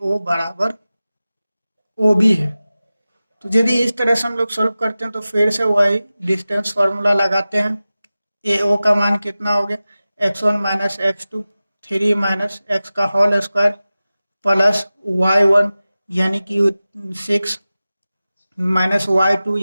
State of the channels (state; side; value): inverted; both; correlation -0.96